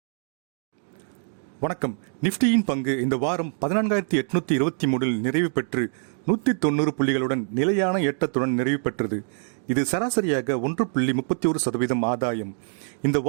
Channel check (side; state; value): left; silent; 56 dB below the other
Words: வணக்கம். நிஃப்டியின் பங்கு இந்த வாரம் 14,823 நிறைவு பெற்று 190 புள்ளிகளுடன் நிலையான ஏற்றத்துடன் நிறைவு பெற்றது. இது சராசரியாக 1.31% ஆதாயம். இந்த